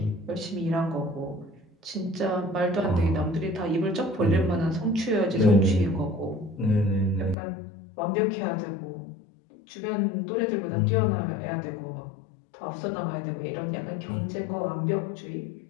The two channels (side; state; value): right; drops out; at 7.4 s